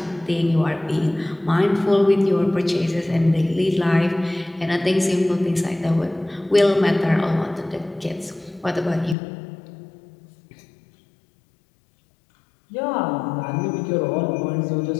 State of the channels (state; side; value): drops out; right; at 9.2 s